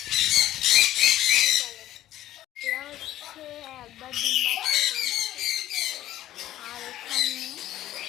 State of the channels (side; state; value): right; quieter; 13.7 dB